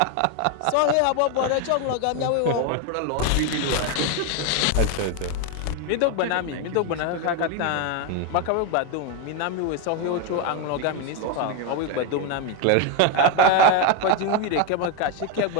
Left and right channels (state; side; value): different; both; correlation 0.01